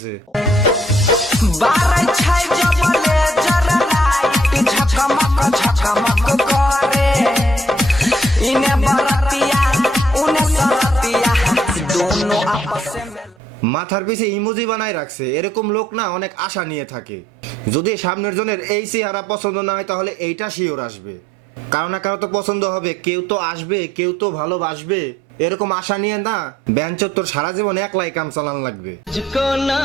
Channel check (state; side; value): normal; both; correlation 0.67